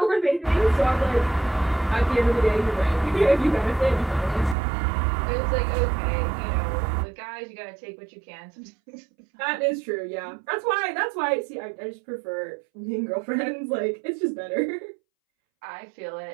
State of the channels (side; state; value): left; drops out; at 4.5 s